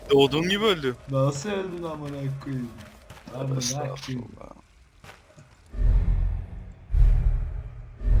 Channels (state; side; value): identical; both; correlation 1.00